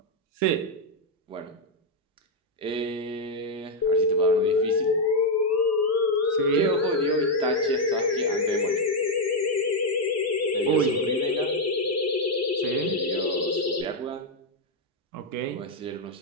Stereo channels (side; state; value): both; normal; correlation 0.01